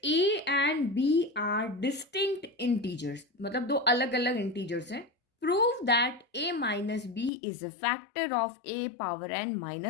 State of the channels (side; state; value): right; drops out; at 7.3 s